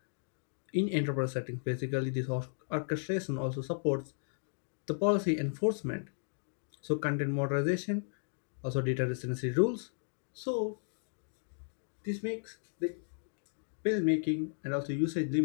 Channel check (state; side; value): silent; right; digital silence